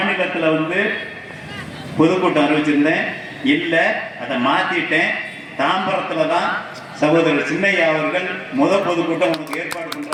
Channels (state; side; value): identical; both; correlation 1.00